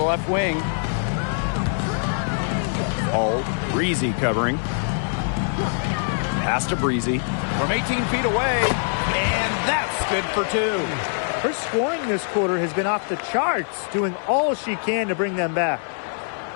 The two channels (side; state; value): right; silent; 63 dB below the other